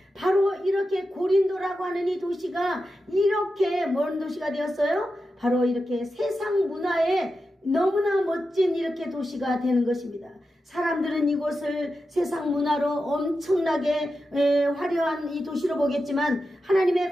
바로 이렇게 고린도라고 하는 이 도시가 이렇게 먼 도시가 되었어요. 바로 이렇게 세상 문화에 너무나 멋진 이렇게 도시가 되는 것입니다. 사람들은 이곳을 세상 문화로 엄청나게 화려한 이 도시로 보겠지만 하나님의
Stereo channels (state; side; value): normal; both; correlation 0.90